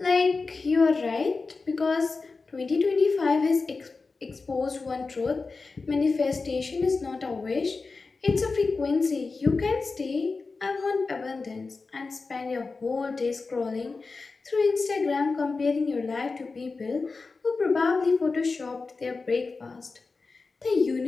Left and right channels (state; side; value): quieter; right; 4.1 dB